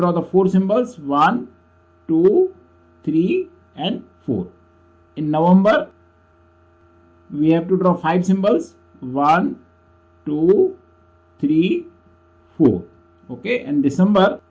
the four symbols, 1, 2, 3 and 4. In November, we have to draw 5 symbols. 1, 2, 3, 4. Okay, and December,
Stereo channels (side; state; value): both; identical; correlation 1.00